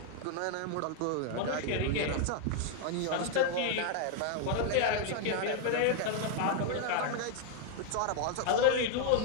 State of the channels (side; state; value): both; different; correlation 0.00